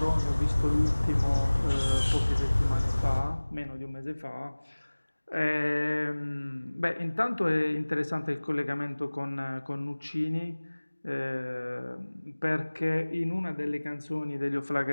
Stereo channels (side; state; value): both; inverted; correlation -1.00